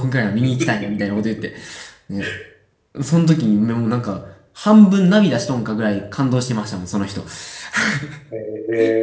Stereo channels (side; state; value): both; identical; correlation 1.00